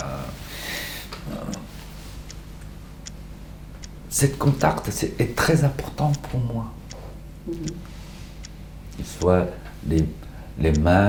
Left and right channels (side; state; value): both; identical; correlation 1.00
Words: cet contact est très important pour moi. Qu'il soit les